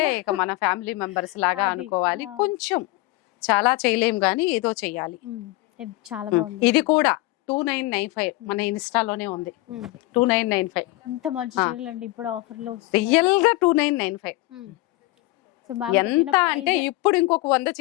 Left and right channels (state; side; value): quieter; right; 20.1 dB